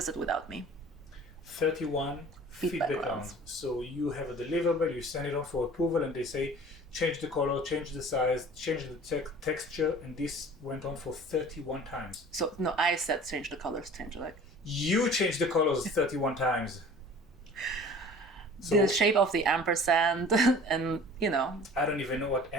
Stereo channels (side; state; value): both; normal; correlation 0.45